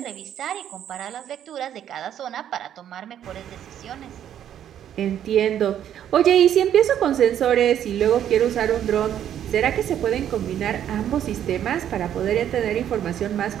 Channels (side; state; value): left; quieter; 10.3 dB